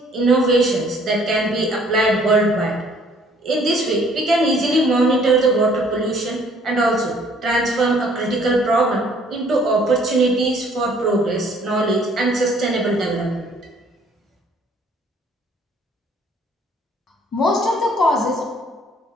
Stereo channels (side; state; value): both; normal; correlation 0.59